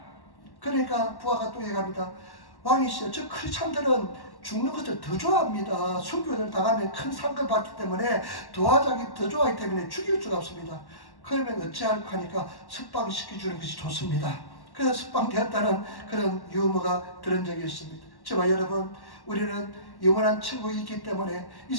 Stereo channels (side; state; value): right; late; 1.1 ms